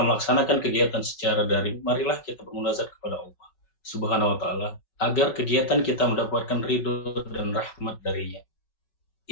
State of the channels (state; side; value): late; right; 5.4 ms